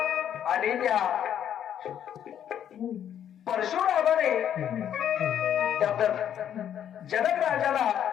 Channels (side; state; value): right; quieter; 9.7 dB